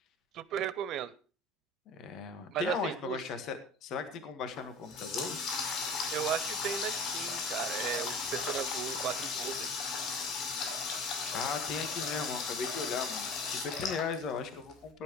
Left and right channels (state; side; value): normal; both; correlation 0.40